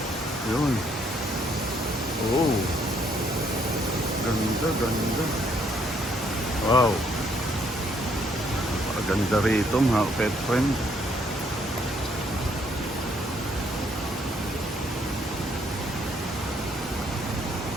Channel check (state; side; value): normal; both; correlation 0.69